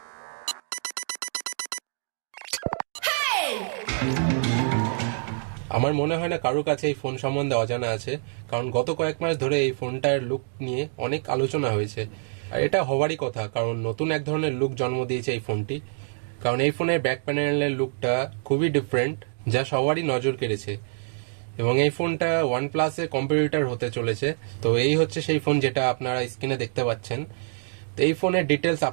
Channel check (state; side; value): silent; left; digital silence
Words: আমার মনে হয় না কারোর কাছে এই phone সম্বন্ধে অজানা আছে, কারণ গত কয়েক মাস ধরে এই ফোনটার লুক নিয়ে অনেক আলোচনা হয়েছে। আর এটা হওয়ারই কথা, কারণ নতুন এক ধরনের লুক জন্ম দিয়েছে এই ফোনটি। কারণ এই ফোনের ব্যাক প্যানেলের লুকটা খুবই ডিফারেন্ট, যা সবারই নজর কেড়েছে। এবং এই ফোনটা OnePlus-এর কম্পিটিটর হতে চলেছে। তো এই হচ্ছে সেই ফোন যেটা আপনারা স্ক্রিনে দেখতে পাচ্ছেন। তো এই ফোনের ডিটেলস